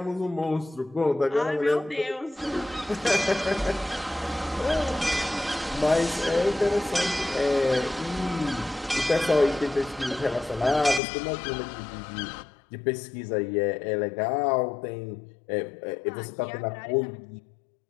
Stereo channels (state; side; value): drops out; right; at 11.0 s